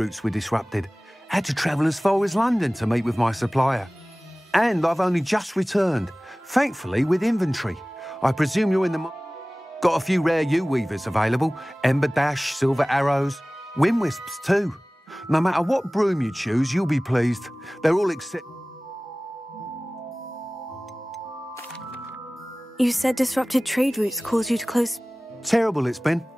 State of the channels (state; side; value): normal; both; correlation 0.98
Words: were disrupted. Had to travel as far as London to meet with my supplier. And I've only just returned, thankfully with inventory. I presume you're in the... Got a few rare U-weavers available. Ember Dash, Silver Arrows, Wind Wisps too. No matter what broom you choose, you'll be pleased. They're all except... You said disrupted trade routes caused you to close... Terrible it's been.